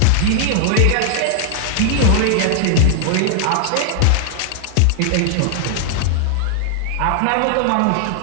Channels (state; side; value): different; both; correlation 0.00